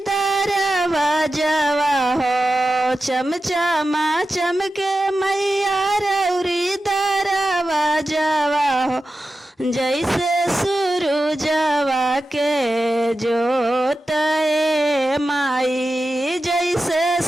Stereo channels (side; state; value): both; normal; correlation 0.92